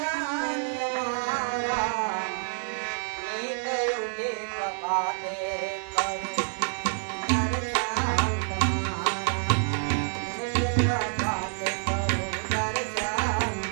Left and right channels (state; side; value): silent; left; digital silence